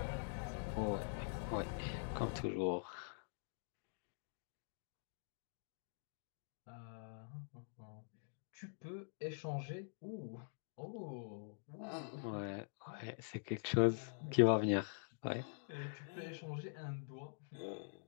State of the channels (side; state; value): right; silent; digital silence